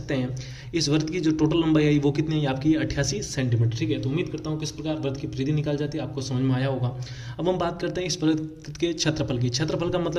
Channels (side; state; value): both; identical; correlation 1.00